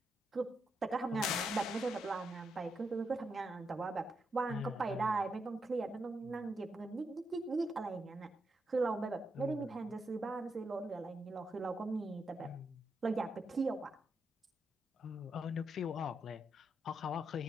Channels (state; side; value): normal; both; correlation 0.82